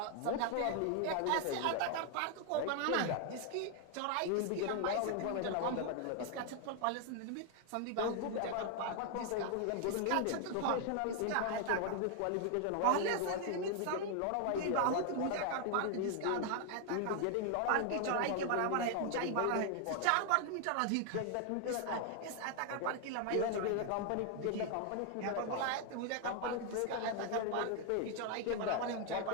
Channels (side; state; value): both; different; correlation 0.00